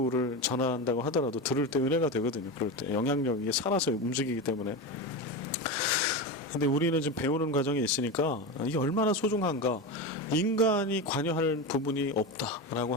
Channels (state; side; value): normal; both; correlation 0.20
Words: 전한다고 하더라도 들을 때 은혜가 되거든요. 그럴 때 영향력이 살아서 움직이기 때문에. 근데 우리는 지금 배우는 과정에 있으니까 이게 얼마나 소중한가. 인간이 관여할 부분이 없다라고